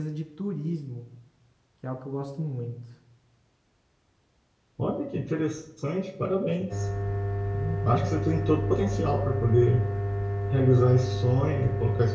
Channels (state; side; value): identical; both; correlation 1.00